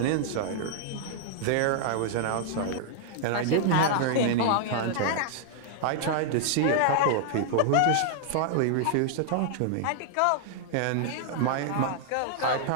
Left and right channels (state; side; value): different; both; correlation -0.01